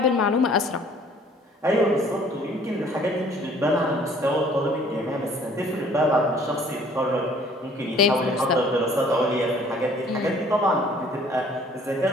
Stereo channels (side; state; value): both; normal; correlation 0.56